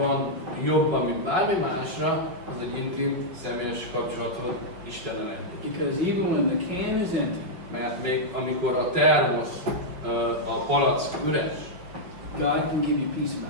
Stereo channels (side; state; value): left; late; 5.3 ms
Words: jobban, mint bármi másra, az egy intim, személyes kapcsolatod Istennel együtt. Because even when the can is empty, Mert még amikor a termosz, a palack üres, God can give you peace